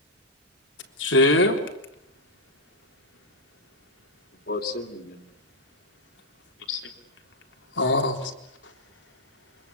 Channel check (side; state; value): both; normal; correlation -0.05